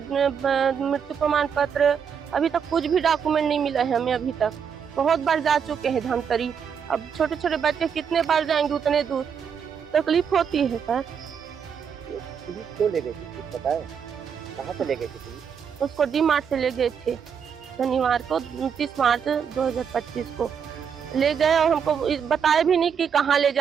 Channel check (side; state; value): left; quieter; 7.2 dB